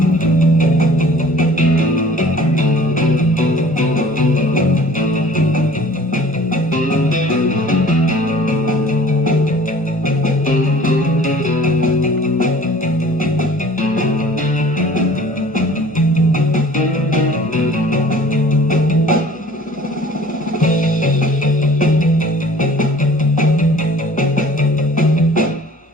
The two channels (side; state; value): both; normal; correlation 0.49